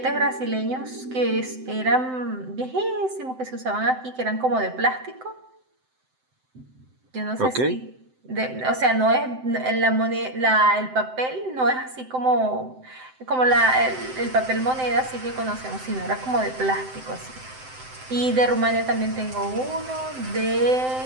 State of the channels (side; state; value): left; late; 7.8 ms